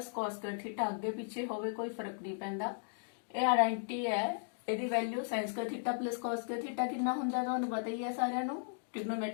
cos² theta. ਅੱਗੇ ਪਿੱਛੇ ਹੋਵੇ ਕੋਈ ਫਰਕ ਨਹੀਂ ਪੈਂਦਾ, ਇਹ ਆਇਡੈਂਟੀ ਹੈ। ਇਹਦੀ value sin² theta plus cos² theta ਕਿੰਨਾ ਹੁੰਦਾ ਤੁਹਾਨੂੰ ਪਤਾ ਹੀ ਹੈ ਸਾਰਿਆਂ ਨੂੰ।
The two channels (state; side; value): silent; right; digital silence